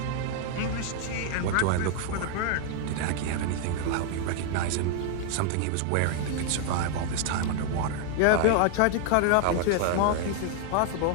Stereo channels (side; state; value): both; different; correlation 0.00